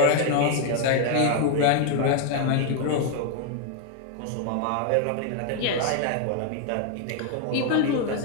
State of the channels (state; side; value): different; both; correlation 0.01